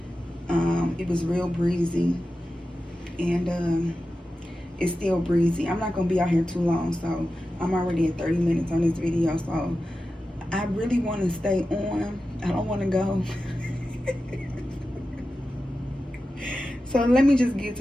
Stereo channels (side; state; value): both; normal; correlation 0.93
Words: It was real breezy, and it's still breezy. I'm not gonna be out here too long, so I'm already at 30 minutes on this video, so I really want to stay on. I don't want to go. So let me just get